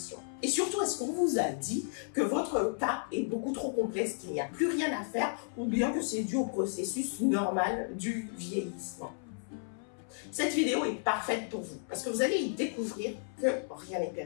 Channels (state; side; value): silent; right; 56 dB below the other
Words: Et surtout, est-ce qu'on vous a dit que votre cas est beaucoup trop complexe, qu'il n'y a plus rien à faire, ou bien que c'est dû au processus normal du vieillissement? Cette vidéo est parfaite pour vous, parce que vous allez y découvrir que rien n'est